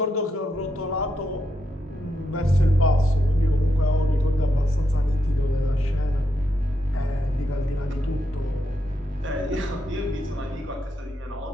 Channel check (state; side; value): normal; both; correlation 0.82